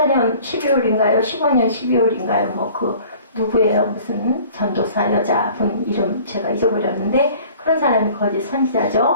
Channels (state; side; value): inverted; both; correlation -0.49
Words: 12월인가요? 15년 12월인가요? 누구예요? 무슨 전도사 여자분 이름 제가 잊어버렸는데 그런 사람이 거짓